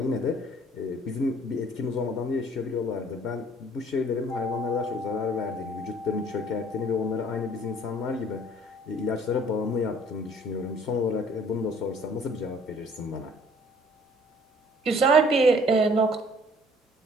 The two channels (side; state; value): both; normal; correlation 0.55